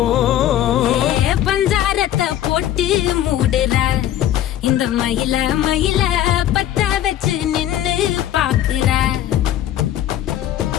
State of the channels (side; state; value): right; quieter; 11.9 dB